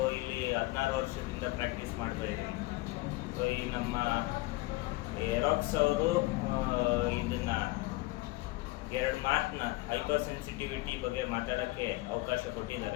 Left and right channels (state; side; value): quieter; right; 20.5 dB